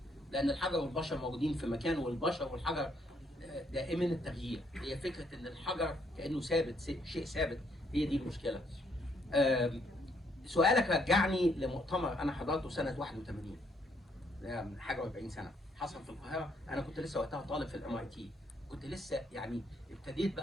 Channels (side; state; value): both; normal; correlation 0.71